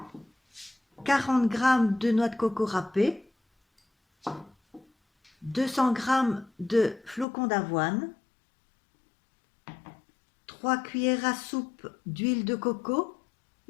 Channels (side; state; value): right; drops out; at 7.2 s